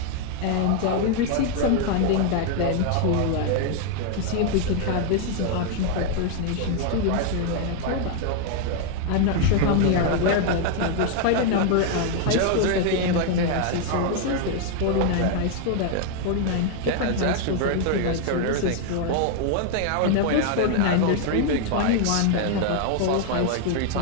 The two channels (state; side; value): different; both; correlation 0.00